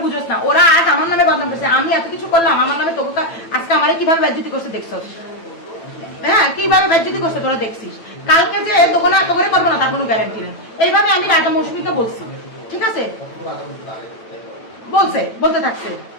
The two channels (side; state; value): right; late; 9.0 ms